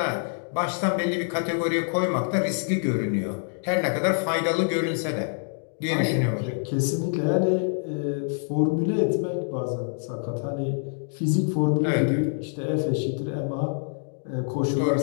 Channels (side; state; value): right; silent; 61 dB below the other